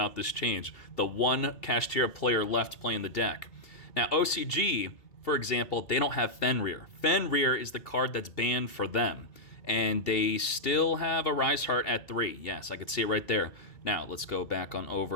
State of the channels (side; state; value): right; late; 2.7 ms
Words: this change. The one Kashtira player left playing the deck. Now, OCG, for example, they don't have Fenrir. Fenrir is the card that's banned for them, and they still have a Rise Heart at 3. Yes, I could see it right there. Now, let's go back on